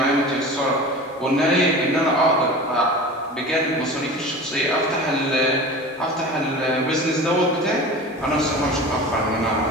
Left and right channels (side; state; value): both; normal; correlation 0.35